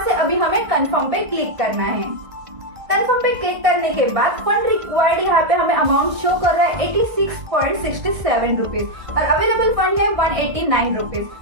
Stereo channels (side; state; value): left; late; 1.5 ms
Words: से अभी हमें कंफर्म पे क्लिक करना है। कंफर्म पे क्लिक करने के बाद फंड रिक्वायर्ड यहाँ पे हमें अमाउंट शो कर रहा है 86.67 रुपीज और अवेलेबल फंड है 189